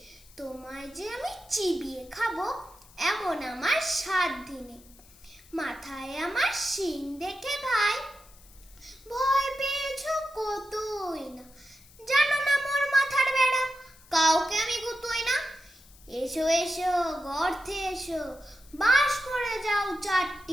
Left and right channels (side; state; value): left; noise; hiss, 25 dB below the sound